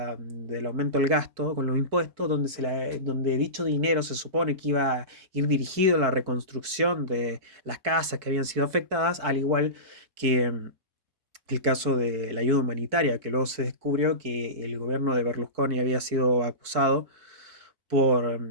aumento del gasto con los impuestos, donde dicho dinero se supone que iba a ir dirigido a la reconstrucción de las casas que habían sido afectadas, al igual que el caso de la ayuda humanitaria, que luego se descubrió que el gobierno de Berlusconi había sido acusado por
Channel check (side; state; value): left; late; 4.5 ms